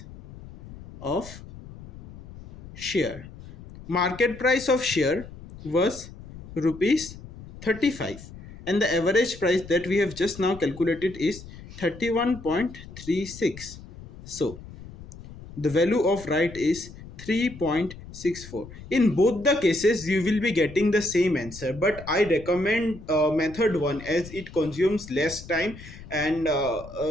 of share. Market price of share was rupees 35 and the average price that we have just now calculated is 31.36. So the value of right is 3.64. In both the cases you will be getting the same answer, but I recommend method 1 as it consumes less time and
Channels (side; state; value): left; noise; rumble, 16 dB below the sound